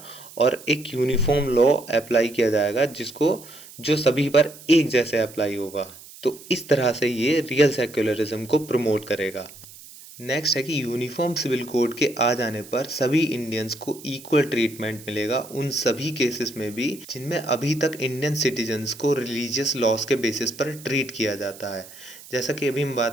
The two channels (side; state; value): right; noise; hiss, 19 dB below the sound